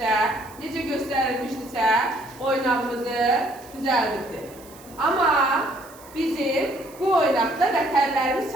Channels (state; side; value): noise; right; hiss, 22 dB below the sound